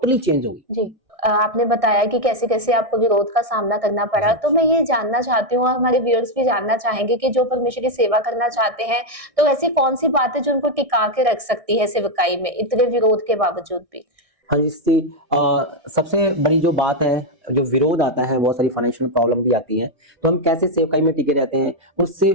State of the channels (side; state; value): left; late; 1.6 ms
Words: चेंज हो गई। जी। आपने बताया कि कैसे कैसे आपको विरोध का सामना करना पड़ा, जी। तो मैं ये जानना चाहती हूँ और हमारे व्यूअर्स भी जानना चाहेंगे कि जो परमेश्वर की सेवा करना चाहते हैं, तो ऐसी कौन सी बात है जो उनको टिका के रख सकती है सेवकाई में इतने विरोध के बावजूद भी? हाँ जी, इससे सबसे बड़ी जो बात है, जो विरोध आता है, बहुत सारी फाइनेंशियल प्रॉब्लम भी आती हैं, तो हम कैसे सेवकाई में टिके रहते हैं, उससे